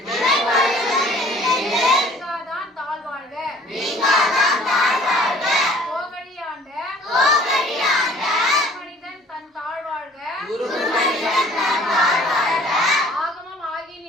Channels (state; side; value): normal; both; correlation 0.53